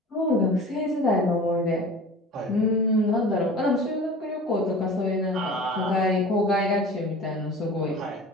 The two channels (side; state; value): both; normal; correlation 0.39